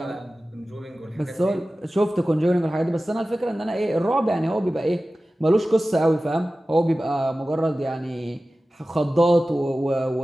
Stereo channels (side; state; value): both; normal; correlation 0.96